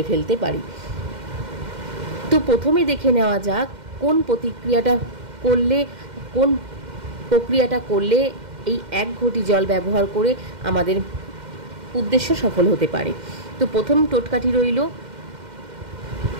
ফেলতে পারি। তো প্রথমে দেখে নেওয়া যাক কোন প্রক্রিয়াটা করলে এই 1 ঘটি জল ব্যবহার করে আমাদের উদ্দেশ্য সফল হতে পারে। তো প্রথম টোটকাটি রইল,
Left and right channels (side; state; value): left; late; 2.1 ms